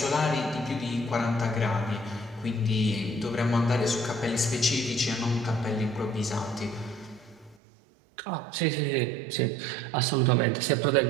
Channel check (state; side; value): drops out; left; at 7.6 s